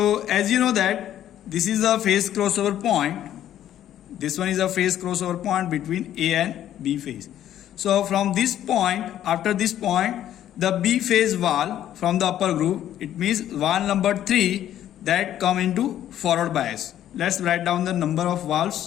as you know that this is a phase crossover point. This one is a phase crossover point between A and B phase. So from this point, after this point, the B phase valve from the upper group, it means valve number 3 that come into forward bias. Let's write down the number of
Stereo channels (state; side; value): quieter; right; 11.5 dB